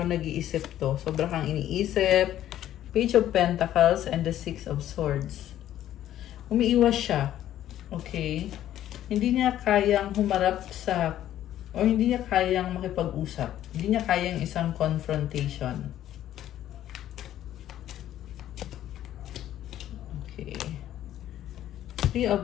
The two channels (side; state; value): right; quieter; 12.2 dB